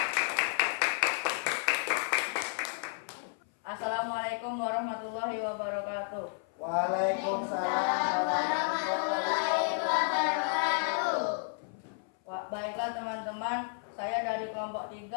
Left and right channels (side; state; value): right; silent; 56 dB below the other